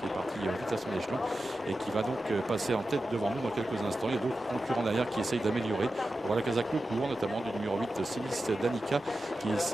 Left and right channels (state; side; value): normal; both; correlation 0.92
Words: est parti vite à son échelon et qui va donc passer en tête devant nous dans quelques instants. Il y a d'autres concurrents derrière qui essayent d'améliorer. On voit la Casa Court, notamment du numéro 8, Silis Danica, qui